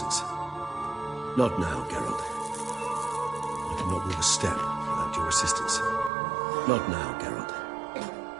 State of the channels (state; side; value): drops out; left; at 6.1 s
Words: Not now, Geralt. I cannot move a step without your assistance. Not now, Geralt.